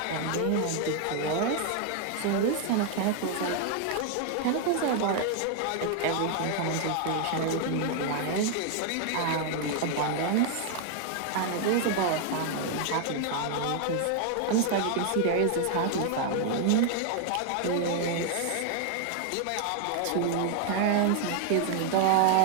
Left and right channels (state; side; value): different; both; correlation 0.00